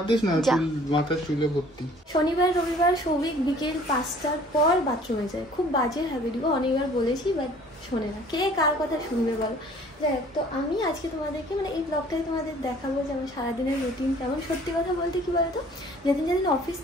দিস না, মাথার চুলে ভর্তি। শনিবার রবিবার সৌভিক বিকেল 5টার পর বাথরুমে যায়। খুব বাজে হ্যাবিট গো, অনেকবার বলেছি বাট শোনে না। কে কার কথা শুনবে বলো। যাই তো আমি আজকে তোমাদেরকে মানে এই ব্লগটাই তোমাদের দেখাবো যে আমার সারাদিনের রুটিন কেমন। সত্যি কথা বলতে কি বলতো, যেদিন যেদিন অফিস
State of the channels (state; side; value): normal; both; correlation 0.53